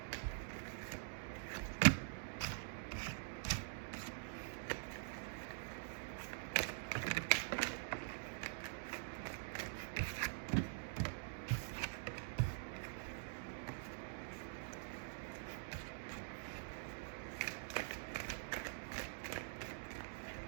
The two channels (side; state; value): left; silent; digital silence